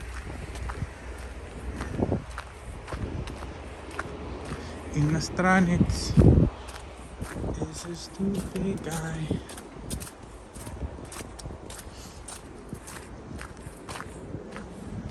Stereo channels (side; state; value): both; identical; correlation 1.00